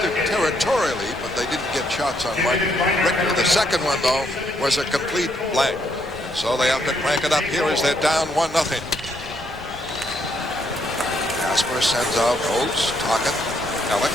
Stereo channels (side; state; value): left; noise; rumble, 19 dB below the sound